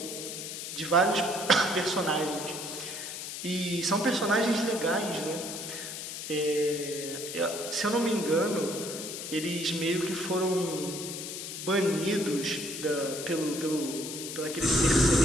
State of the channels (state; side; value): noise; left; hiss, 7 dB below the sound